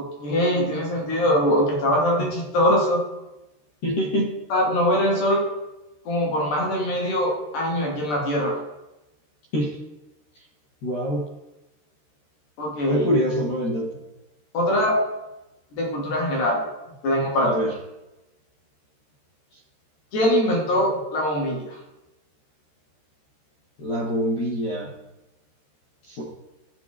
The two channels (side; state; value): right; late; 13 ms